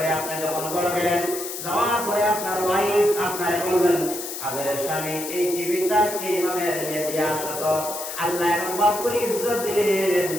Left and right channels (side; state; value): left; noise; hiss, 7 dB below the sound